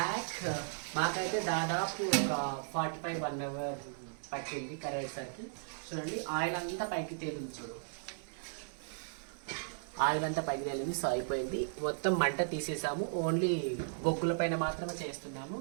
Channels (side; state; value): left; silent; digital silence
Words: మాకైతే దాదాపు ఒక 45-1 అవర్ పట్టింది కరేసరికి. చూడండి ఆయిల్ అంతా పైకి తేలింది, చూడు ఆయిల్ అంతా పైకి తేలింది. సో అయిపోయింది, మొత్తం మంట తీసేసాము. ఓన్లీ బొగ్గుల పైన మాత్రమే చేస్తున్నాము.